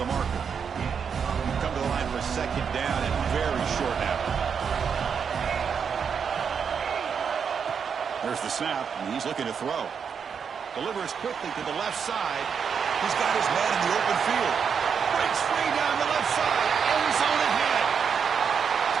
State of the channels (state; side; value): quieter; left; 6.7 dB